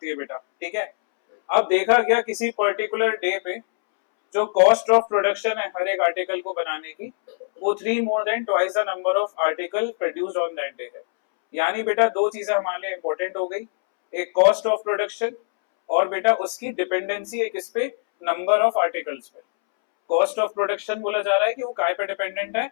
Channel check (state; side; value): silent; right; 63 dB below the other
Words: है बेटा, ठीक है। अब देखा गया किसी पर्टिकुलर डे पे जो कॉस्ट ऑफ प्रोडक्शन है हर एक आर्टिकल को बनाने की, वो 3 more than twice the number of article produced on that day है। यानी बेटा दो चीजें हमारे लिए इंपॉर्टेंट हो गई, एक कॉस्ट ऑफ प्रोडक्शन और बेटा उसकी डिपेंडेंसी है किस पे? नंबर ऑफ आर्टिकल्स पे। कॉस्ट ऑफ प्रोडक्शन बोला जा रहा है कि वो काय पे डिपेंडेंट है?